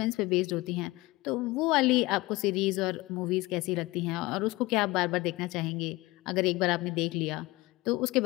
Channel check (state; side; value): quieter; right; 20.9 dB